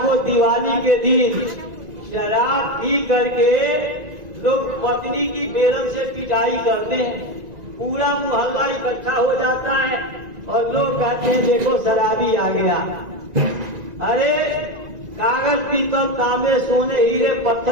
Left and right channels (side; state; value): left; late; 1.9 ms